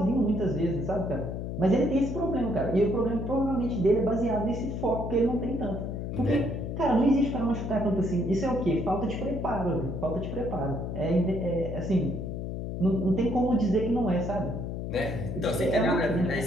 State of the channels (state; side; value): noise; left; hum, 5 dB below the sound